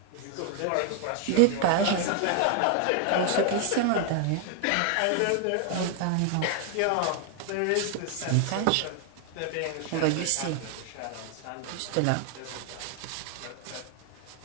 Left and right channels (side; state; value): both; different; correlation 0.00